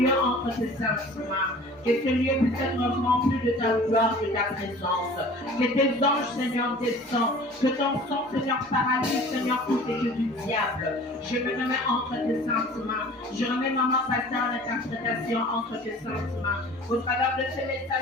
entre tes saintes mains. Que ces lieux puissent être remplis de ta gloire, de ta présence. Que tes anges, Seigneur, descendent. Que ton sang, Seigneur, paralyse, Seigneur, tout et que du diable. Je me remets entre tes saintes mains. Je remets Maman Pasteur l'interprétation entre tes saintes mains. Au travers de ces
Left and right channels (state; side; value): normal; both; correlation 0.45